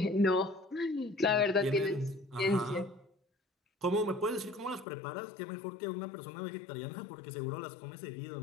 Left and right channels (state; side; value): drops out; right; at 4.9 s